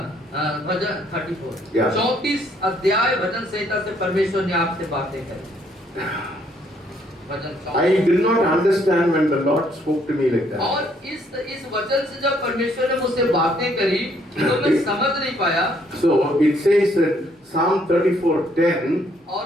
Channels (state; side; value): normal; both; correlation 0.68